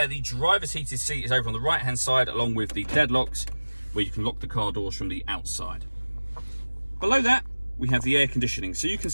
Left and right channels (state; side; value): inverted; both; correlation -1.00